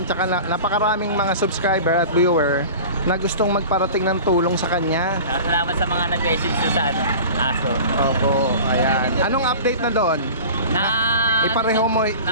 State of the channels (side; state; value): both; inverted; correlation -0.37